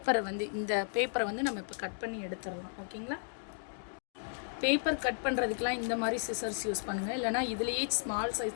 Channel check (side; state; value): right; silent; digital silence